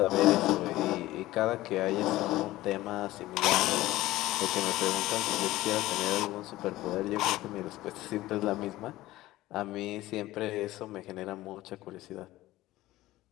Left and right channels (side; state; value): right; quieter; 16.8 dB